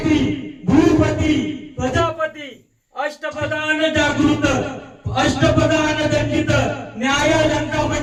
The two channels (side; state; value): both; identical; correlation 1.00